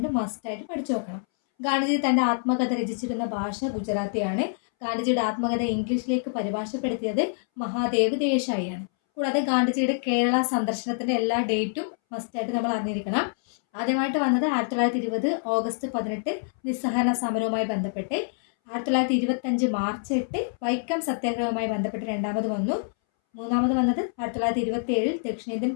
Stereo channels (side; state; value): right; silent; 61 dB below the other